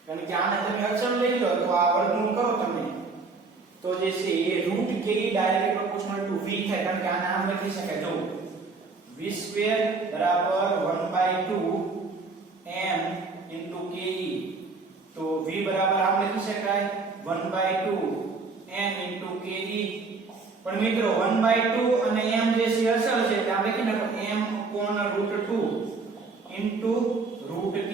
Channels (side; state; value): left; quieter; 4.1 dB